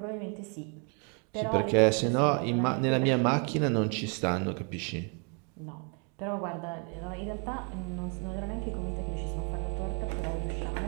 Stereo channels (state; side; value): quieter; left; 37.4 dB